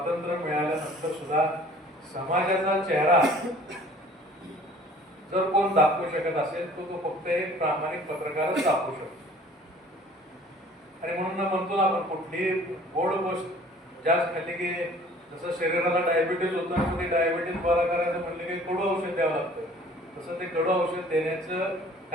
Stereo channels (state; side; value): normal; both; correlation 0.51